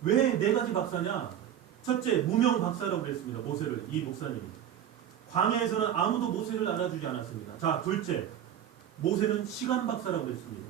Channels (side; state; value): left; quieter; 10.2 dB